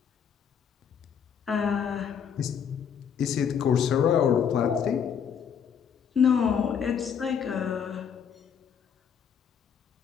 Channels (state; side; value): quieter; right; 7.6 dB